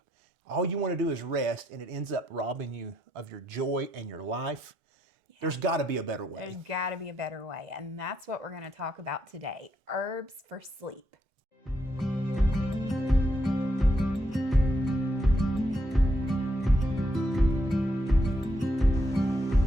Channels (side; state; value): both; normal; correlation 0.77